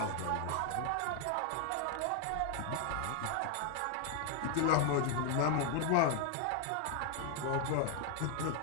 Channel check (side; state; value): both; different; correlation 0.00